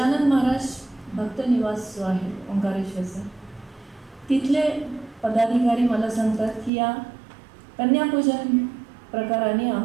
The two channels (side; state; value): left; drops out; at 6.7 s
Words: महाराज भक्त निवास जो आहे ओंकारेश्वरचा, तिथले पदाधिकारी मला सांगतात की या कन्यापूजन प्रकाराने